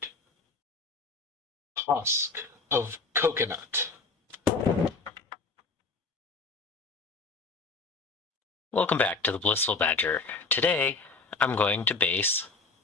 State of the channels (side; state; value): right; quieter; 4.0 dB